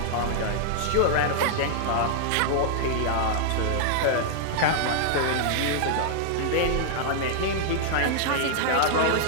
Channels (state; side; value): different; both; correlation -0.01